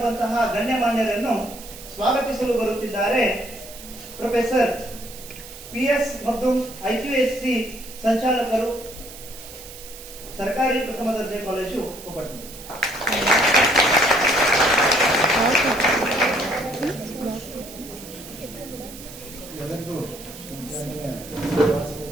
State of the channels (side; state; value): right; noise; hiss, 15 dB below the sound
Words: ಗಣ್ಯಮಾನ್ಯರನ್ನು ಸ್ವಾಗತಿಸಲು ಬರುತ್ತಿದ್ದಾರೆ ಪ್ರೊಫೆಸರ್ PS ಮಗ್ದುಮ್, IQSC ಸಂಚಾಲಕರು, ಸರ್ಕಾರಿ ಪ್ರಥಮ ದರ್ಜೆ ಕಾಲೇಜು ಕೊಪ್ಪಳ. ಎಲ್ಲರಿಗೂ